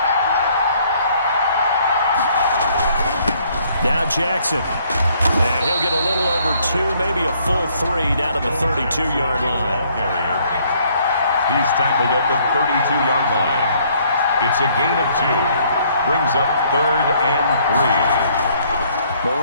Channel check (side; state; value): both; inverted; correlation -0.64